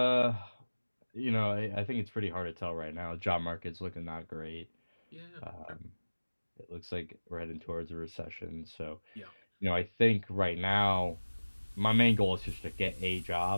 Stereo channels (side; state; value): both; inverted; correlation -1.00